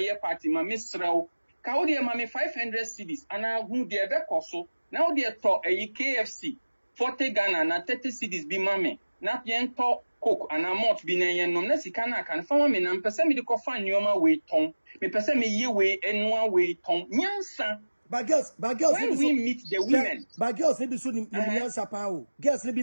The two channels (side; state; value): both; inverted; correlation -1.00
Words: year party, my Miss Rao, Kaudia Mammy 500 CDs, and I who dear back also, now dear talk a KFC, 40 Ghana, and 30 CDs be mammy, not yen talk cook, and I'm not being a no Nessicana can farm in and person me the coffin yoma way tongue, me person me ye way and 1 way tongue, Yansa. But girls, when we meet the women, but girls maybe soon in Sapa. Girls maybe